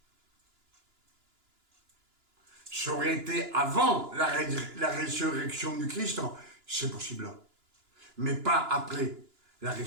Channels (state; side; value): late; left; 2.9 ms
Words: Ça aurait été avant la résurrection du Christ, c'est possible. Mais pas après la